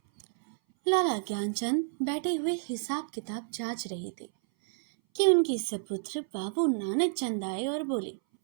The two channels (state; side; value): silent; left; 58 dB below the other